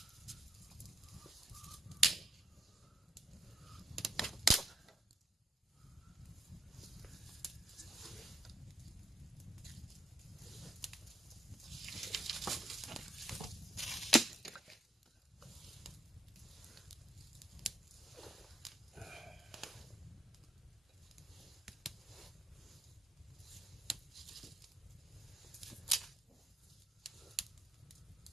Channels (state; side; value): normal; both; correlation 0.75